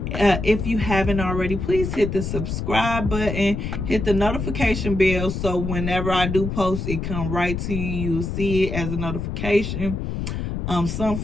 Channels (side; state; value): left; noise; rumble, 4 dB below the sound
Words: you haven't already, please hit the subscribe button, hit the notification bell, so whenever I do post, it come right to you. You'll see it as a notification. Some